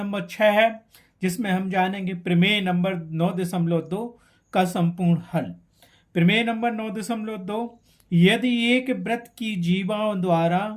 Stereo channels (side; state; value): both; identical; correlation 1.00